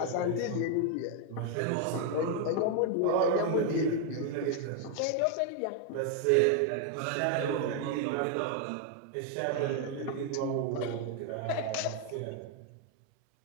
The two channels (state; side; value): different; both; correlation 0.00